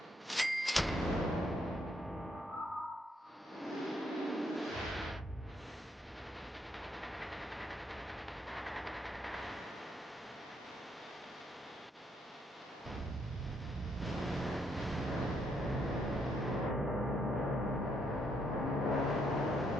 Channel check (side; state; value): both; normal; correlation 0.74